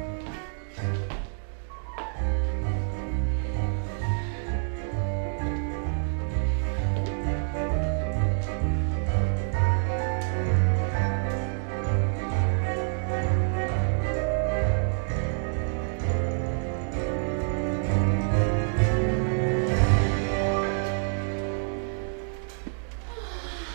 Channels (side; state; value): left; silent; 60 dB below the other